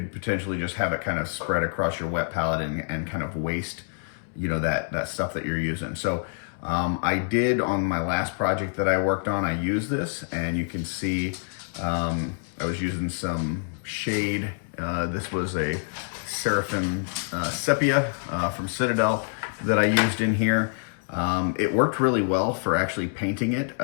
potentially just have it kind of spread across your wet palette and kind of waste, that stuff that you're using. So I did, on my last project that I worked on, I used this, and you can see I was using some shade. This was a Seraphim Sepia from Citadel that I used in here. It worked really well for actually painting it.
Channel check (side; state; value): right; silent; 61 dB below the other